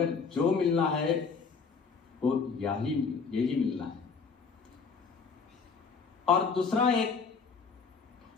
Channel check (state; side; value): quieter; right; 5.3 dB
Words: जो मिलना है वो यही मिलना है। और दूसरा एक